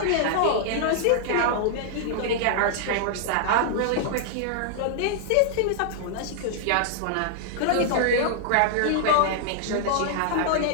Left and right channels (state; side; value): different; both; correlation -0.01